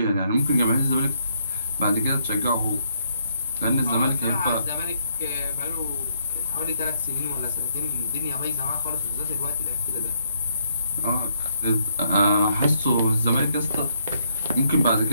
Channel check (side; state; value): both; inverted; correlation -0.72